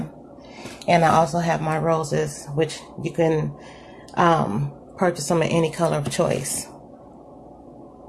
And I also have my roses, which you can purchase them in any color of choice.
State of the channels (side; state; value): both; identical; correlation 1.00